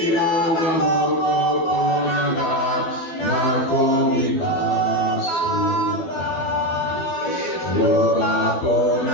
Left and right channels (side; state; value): right; late; 12 ms